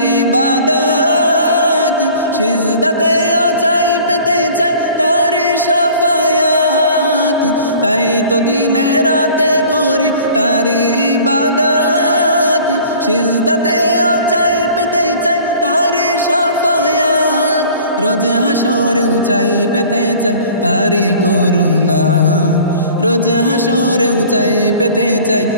ইবাদত, সিজদাতে চাই পেতে চাই তারি শাফায়াত। তাই তো দিনে রাতে করি তারি ইবাদত, সিজদাতে চাই পেতে চাই তারি শাফায়াত। রোজ হাসরেও চাই পেতে চাই তারি করুণা, রোজ হাসরেও চাই পেতে চাই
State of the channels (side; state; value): both; inverted; correlation -0.48